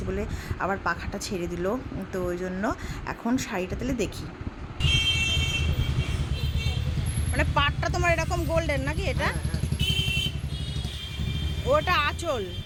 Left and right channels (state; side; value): identical; both; correlation 1.00